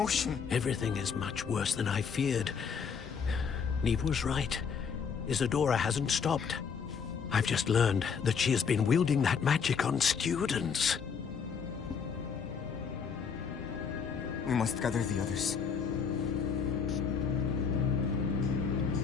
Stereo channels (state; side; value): quieter; right; 6.4 dB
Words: Everything is much worse than I feared. Neve was right. Isadora hasn't stopped. I've just learned that she has been wielding that magic on students. We must gather the others.